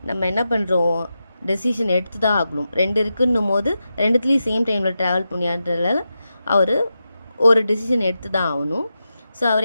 நம்ம என்ன பண்ணுறோம், டெசிஷன் எடுத்து தான் ஆகணும். ரெண்டு இருக்குன்னும் போது ரெண்டுத்துலேயும் சேம் டைமில் ட்ராவல் பண்ணியான்றதால அவர் ஒரு டெசிஷன் எடுத்து தான் ஆகணும். ஸோ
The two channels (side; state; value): both; inverted; correlation -0.89